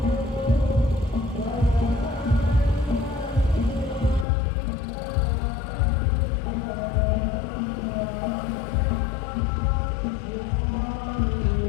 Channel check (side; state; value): right; drops out; at 4.2 s